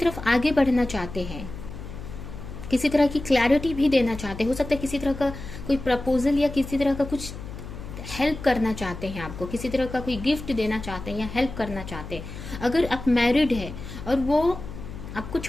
आगे बढ़ना चाहते हैं, किसी तरह की क्लैरिटी भी देना चाहते हैं। हो सकता है किसी तरह का कोई प्रपोजल या किसी तरह का कुछ हेल्प करना चाहते हैं आपको, किसी तरह का कोई गिफ्ट देना चाहते हैं या हेल्प करना चाहते हैं। अगर आप मैरिड है और वो आपको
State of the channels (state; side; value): noise; left; hum, 11 dB below the sound